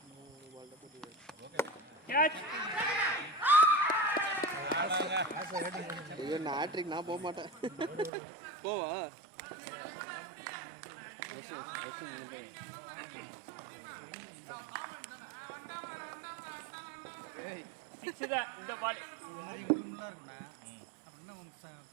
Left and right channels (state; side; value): drops out; left; at 8.1 s